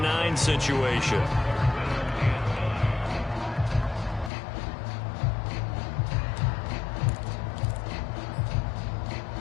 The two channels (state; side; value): drops out; right; at 4.3 s